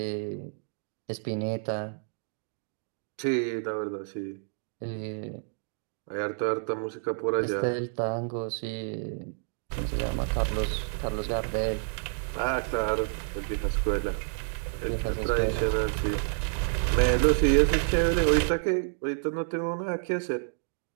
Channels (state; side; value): silent; left; digital silence